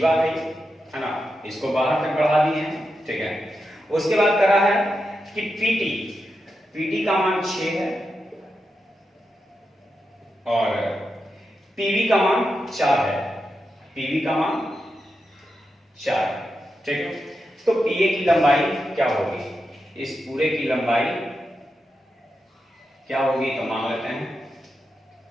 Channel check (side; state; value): both; normal; correlation 0.87